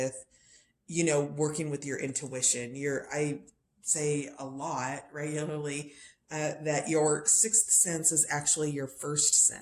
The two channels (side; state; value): both; identical; correlation 1.00